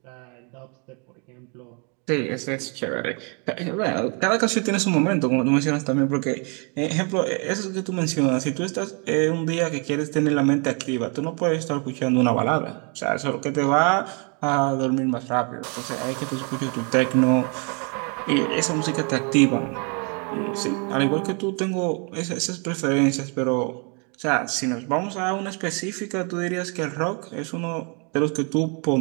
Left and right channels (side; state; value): left; quieter; 36.4 dB